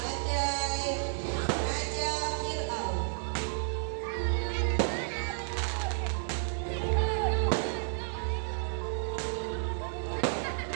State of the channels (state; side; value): silent; left; digital silence